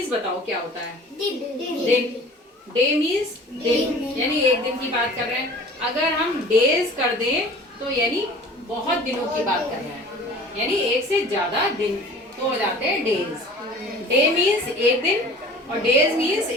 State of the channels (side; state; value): both; normal; correlation 0.44